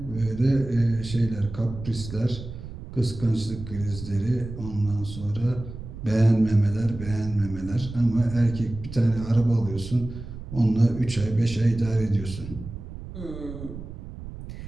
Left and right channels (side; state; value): right; noise; rumble, 11 dB below the sound